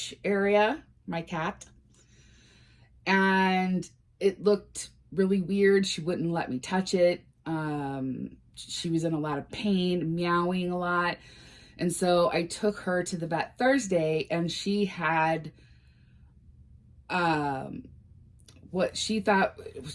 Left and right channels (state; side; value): identical; both; correlation 1.00